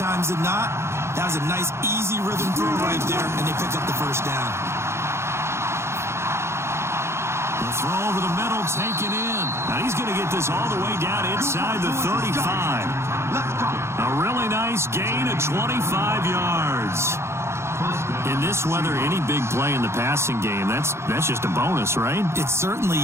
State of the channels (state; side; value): late; left; 0.13 ms